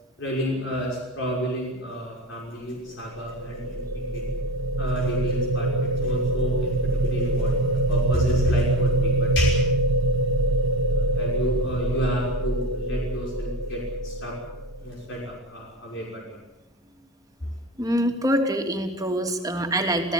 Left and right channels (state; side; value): normal; both; correlation 0.31